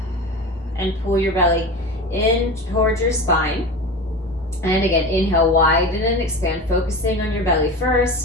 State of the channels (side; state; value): both; normal; correlation 0.29